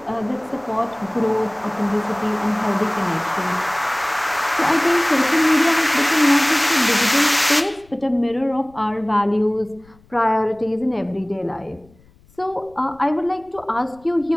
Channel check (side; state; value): left; noise; rumble, 29 dB below the sound